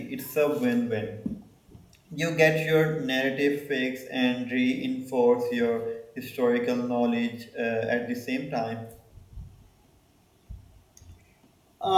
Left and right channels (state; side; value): identical; both; correlation 1.00